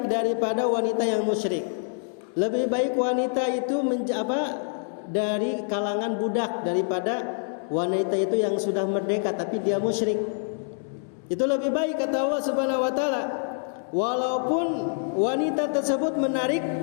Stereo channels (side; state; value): right; silent; digital silence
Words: daripada wanita yang musyrik. Lebih baik wanita itu dari kalangan budak daripada wanita itu yang sudah merdeka tapi dia musyrik. Itu lebih baik kata Allah Subhanahu wa taala. Walaupun wanita tersebut menarik